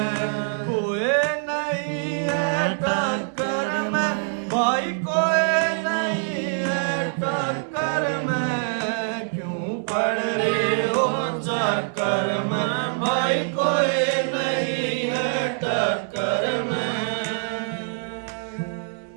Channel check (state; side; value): silent; left; 57 dB below the other